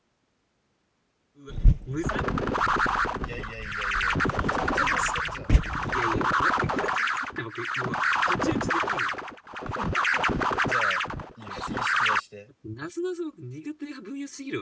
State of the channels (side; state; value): both; identical; correlation 1.00